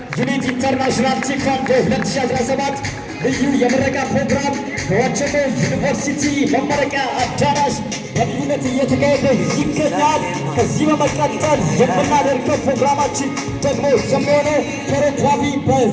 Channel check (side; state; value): both; identical; correlation 1.00